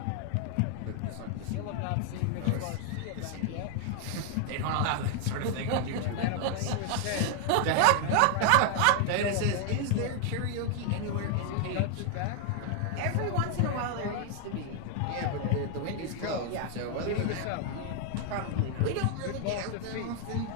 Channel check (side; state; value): both; different; correlation 0.00